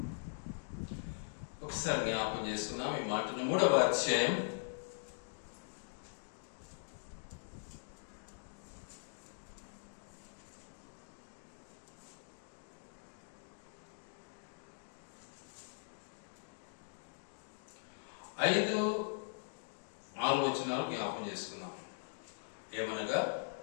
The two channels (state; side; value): silent; right; digital silence